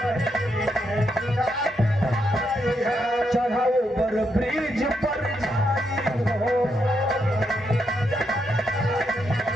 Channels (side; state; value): both; normal; correlation 0.80